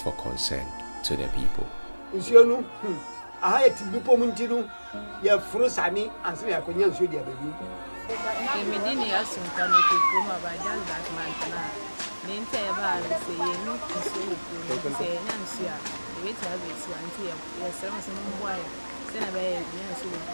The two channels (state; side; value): inverted; both; correlation -1.00